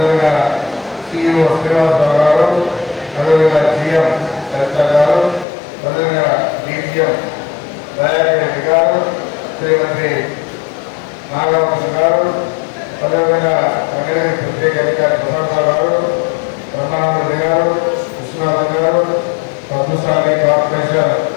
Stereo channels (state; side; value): drops out; right; at 5.5 s